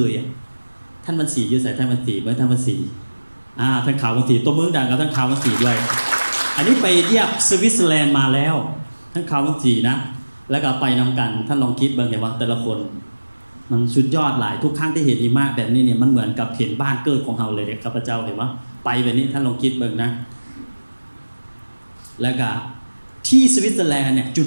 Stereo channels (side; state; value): both; inverted; correlation -1.00